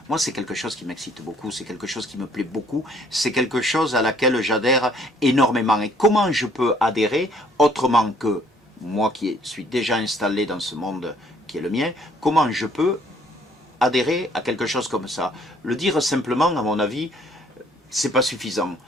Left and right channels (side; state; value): both; normal; correlation 0.61